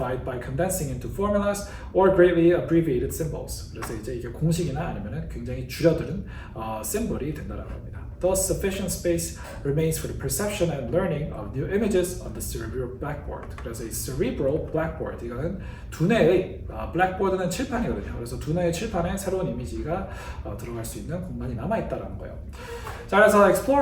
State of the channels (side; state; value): both; identical; correlation 1.00